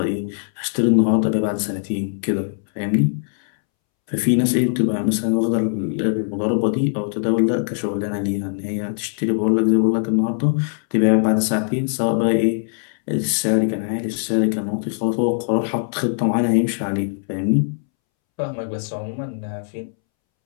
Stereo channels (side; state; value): right; silent; 65 dB below the other